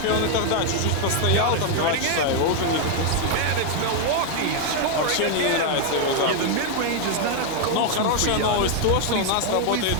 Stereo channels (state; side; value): different; both; correlation 0.00